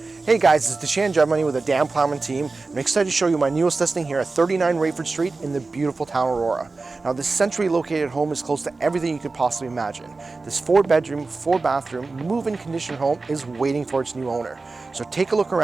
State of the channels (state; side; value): quieter; left; 3.8 dB